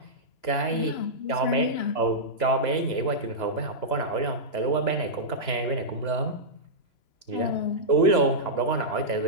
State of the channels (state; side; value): late; right; 3.0 ms